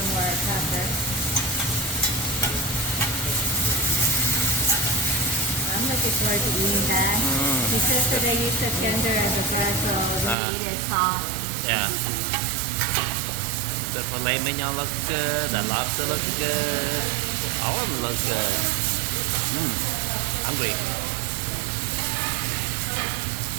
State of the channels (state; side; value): drops out; left; at 10.4 s